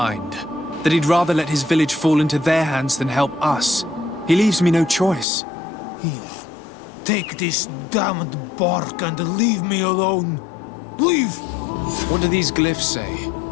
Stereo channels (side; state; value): right; drops out; at 5.2 s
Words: That he'd rather let his village fall into their hands than help us. He leaves me no choice. Here, take this damned bark and leave me alone. Leave! What do these glyphs say?